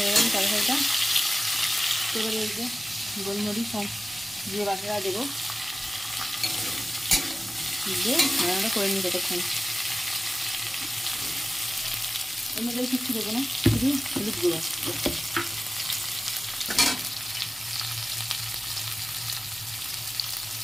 গেল তরকারিটা। এবারে এই যে গোলমরিচ আর জিরে বাটাটা দেবো, দিয়ে রান্নাটা করে নিই ততক্ষণ। এর মধ্যে কিচ্ছু দেবো না, শুধু হলুদ গুঁড়ো।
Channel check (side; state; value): both; normal; correlation 0.95